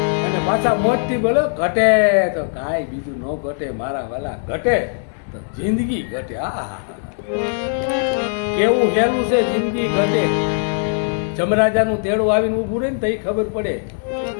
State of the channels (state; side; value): silent; right; 66 dB below the other